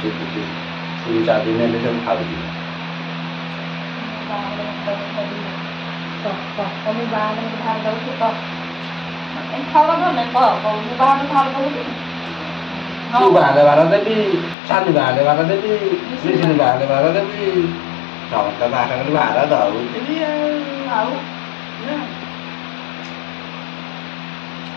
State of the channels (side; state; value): right; drops out; at 14.6 s